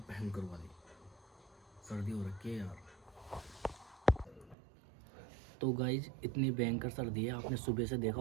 भयंकर वाली, सर्दी हो रखी है यार। तो गाइज इतनी भयंकर सर्दी है, आपने सुबह से देखा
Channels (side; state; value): left; drops out; at 4.5 s